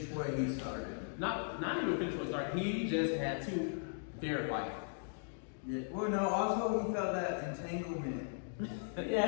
what he started. Not even finish what he started. He just had to verify it. Yeah. Well, no. Also, he felt that entanglement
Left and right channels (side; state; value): right; silent; digital silence